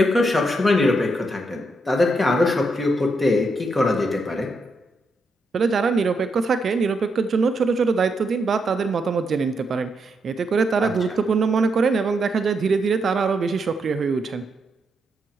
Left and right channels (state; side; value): normal; both; correlation 0.80